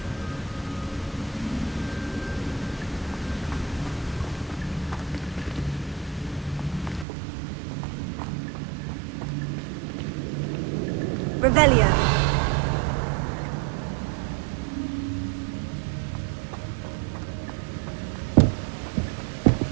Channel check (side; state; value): left; drops out; at 7.1 s